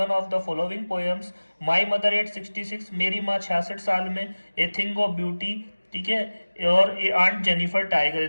of the following poems. My mother eight 66, मेरी माँ 66 साल में, ए थिंग ऑफ ब्यूटी, ठीक है, और ए आंट जेनिफर टाइगर।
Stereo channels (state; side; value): inverted; both; correlation -1.00